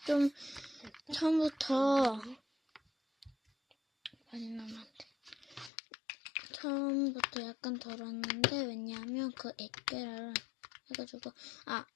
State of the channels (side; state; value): right; drops out; at 5.7 s